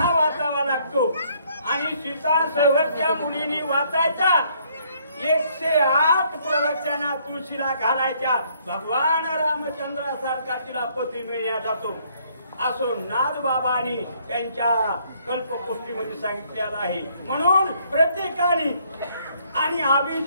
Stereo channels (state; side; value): inverted; both; correlation -0.66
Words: वाचावा लागतो आणि सीता संवर त्या मुलीनी वाचायचा। 108 प्रवचना तुळशीला घालायच्या, भगवान रामचंद्रासारखा तिला पती मिळण्यात जातो असो नाथबाबांनी त्यांच्या कल्पकोष्ठीमध्ये सांगितलेलं आहे। म्हणून प्रत्येकाने आणि